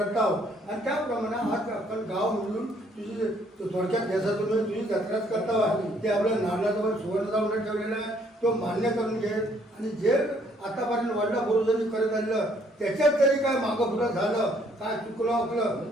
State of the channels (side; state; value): both; normal; correlation 0.65